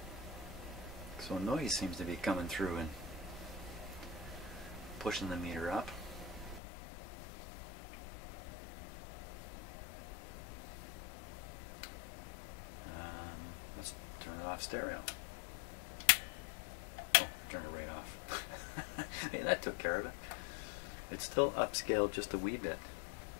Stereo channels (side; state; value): right; drops out; at 6.6 s